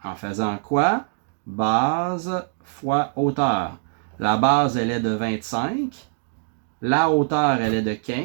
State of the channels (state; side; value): silent; left; digital silence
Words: En faisant quoi? Base fois hauteur. La base, elle est de 25. La hauteur, elle est de